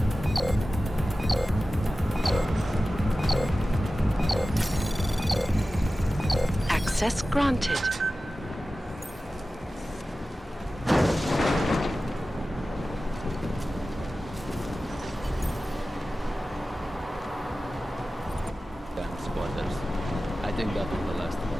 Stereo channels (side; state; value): both; normal; correlation 0.95